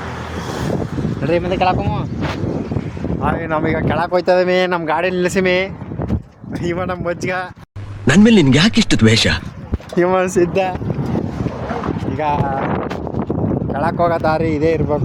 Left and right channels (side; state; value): both; identical; correlation 1.00